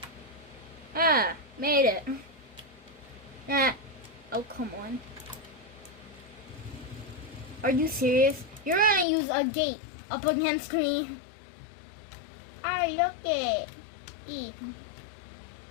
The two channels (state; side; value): drops out; right; at 9.1 s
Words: Ah, made it. Ah. Oh, come on. Are you serious? You're gonna use a gate up against me? Oh, look it.